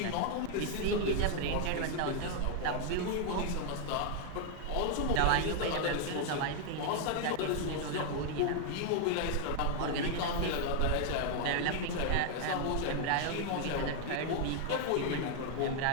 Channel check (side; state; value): both; different; correlation 0.00